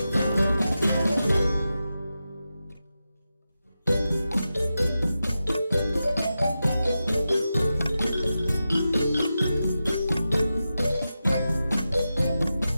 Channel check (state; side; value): inverted; both; correlation -0.91